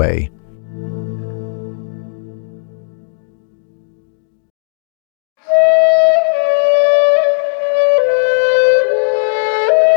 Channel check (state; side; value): silent; right; 70 dB below the other